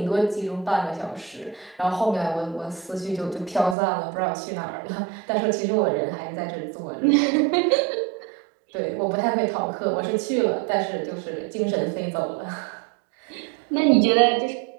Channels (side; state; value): left; drops out; at 3.8 s